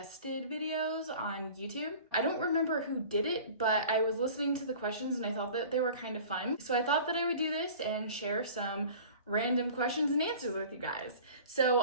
videos on YouTube. I don't remember who did it, but I was listening to the questions and I thought that they were kind of fun. So I thought that I would do this and share some random questions and answers with you guys.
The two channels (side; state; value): both; inverted; correlation -0.43